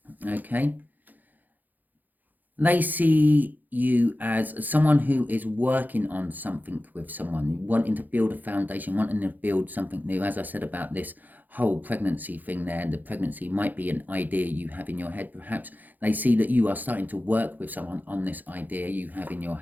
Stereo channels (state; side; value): late; left; 0.084 ms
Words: Okay, they see you as someone who is working on something with someone, wanting to build a foundation, wanting to build something new. As I said about this whole pregnancy thing there, the pregnancy might be an idea you have in your head. Perhaps they see that you are starting to work with someone on this idea you have in your